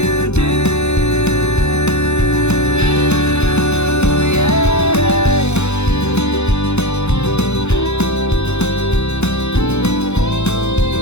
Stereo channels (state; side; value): late; right; 0.81 ms